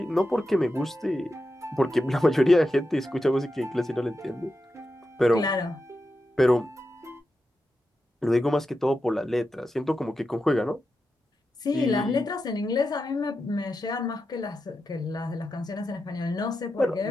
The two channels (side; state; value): both; normal; correlation 0.89